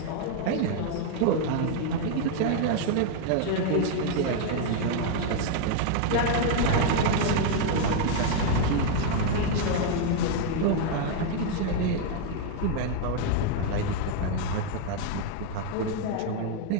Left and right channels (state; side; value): different; both; correlation 0.00